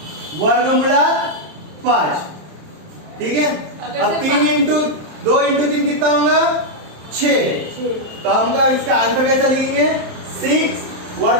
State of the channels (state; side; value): late; left; 27 ms